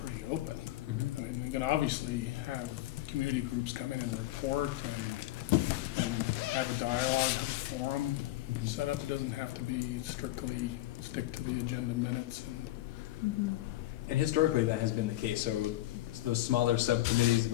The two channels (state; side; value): quieter; right; 16.0 dB